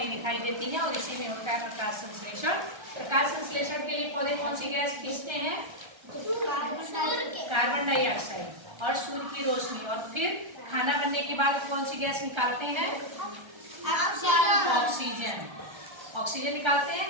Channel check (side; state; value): left; late; 1.3 ms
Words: दिखाई देती हैं, और इसी में होता है प्रकाश संश्लेषण। प्रकाश संश्लेषण के लिए पौधे कौन सी गैस खींचते हैं? कार्बन डाइऑक्साइड और सूर्य की रोशनी, और फिर खाना बनने के बाद कौन सी गैस निकालते हैं? ऑक्सीजन। ऑक्सीजन निकालते